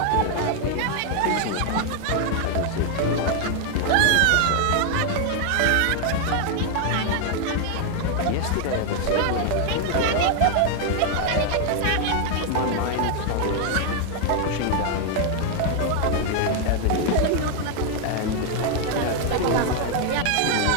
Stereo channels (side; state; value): both; different; correlation 0.00